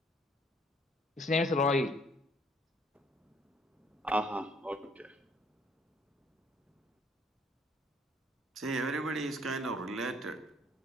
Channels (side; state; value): both; normal; correlation 0.62